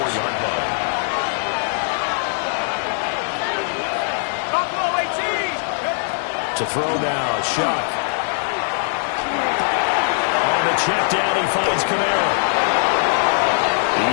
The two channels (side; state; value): right; silent; 60 dB below the other